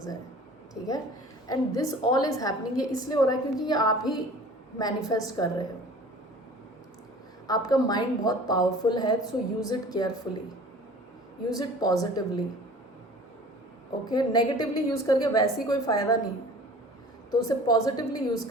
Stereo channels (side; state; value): both; normal; correlation 0.45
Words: हैं, ठीक है। And this all is happening, ये इसलिए हो रहा है क्योंकि ये आप ही मैनिफेस्ट कर रहे हो। आपका माइंड बहुत पावरफुल है, so use it carefully, use it positively, okay. Negatively use करके वैसे ही कोई फ़ायदा नहीं, तो उसे पॉजिटिवली यूज़